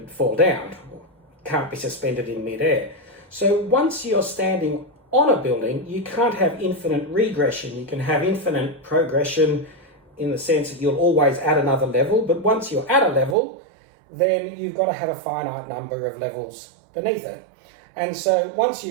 fall down. Can't be suspended in midair. So once you're standing on a building, you can't have infinite regression. You can have infinite progression in the sense that you'll always add another level, but once you're at a level, then you've got to have a finite number of levels beneath it. And so once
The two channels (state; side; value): drops out; left; at 13.4 s